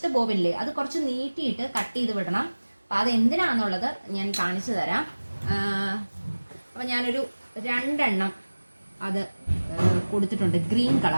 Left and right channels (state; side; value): inverted; both; correlation -1.00